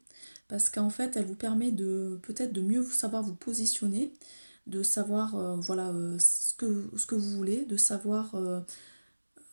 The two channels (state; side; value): inverted; both; correlation -1.00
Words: parce qu'en fait, elle vous permet de peut-être de mieux savoir vous positionner, de savoir voilà, ce que vous voulez, de savoir,